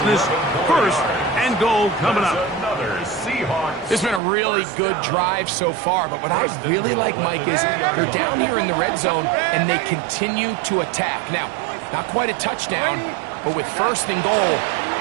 1st and goal coming up. This has been a really good drive so far, but what I really like, Mike, is they're down here in the red zone, and they continue to attack. Now, not quite a touchdown, but with 1st and goal,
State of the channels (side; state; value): left; drops out; at 4.2 s